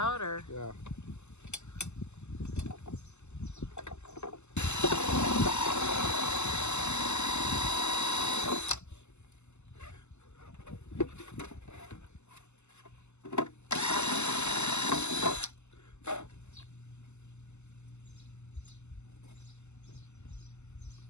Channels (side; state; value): right; late; 0.83 ms